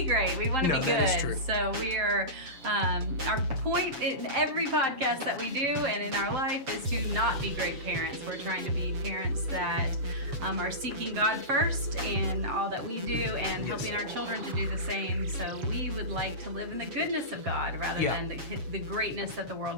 great. We want to be good. That is true. So we are, our point in every podcast that we do and in our life is to not be great parents. We're trying to be parents that are seeking God first in all that we do and helping our children to do the same. So we would like to live in the goodness of God rather than the greatness that the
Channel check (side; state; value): left; late; 7.1 ms